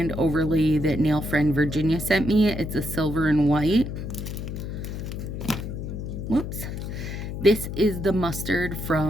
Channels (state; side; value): noise; left; hum, 6 dB below the sound